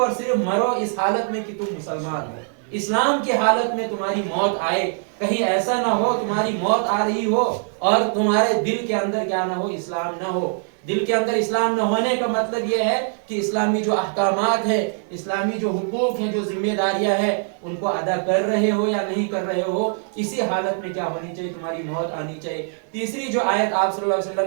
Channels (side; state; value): left; silent; 61 dB below the other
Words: صرف مرو اس حالت میں کہ تم مسلمان ہو، اسلام کی حالت میں تمہاری موت آئے. کہیں ایسا نہ ہو تمہاری موت آ رہی ہو اور تمہارے دل کے اندر کیا نہ ہو، اسلام نہ ہو. دل کے اندر اسلام نہ ہونے کا مطلب یہ ہے کہ اسلامی جو احکامات ہیں، اسلامی جو حقوق ہیں، جو ذمہ داریاں ہیں، ان کو ادا کر رہے ہو یا نہیں کر رہے ہو. اسی حالت میں کیا ہونی چاہیے، تمہاری موت آنی چاہیے. تیسری جو آیت آپ صلی اللہ علیہ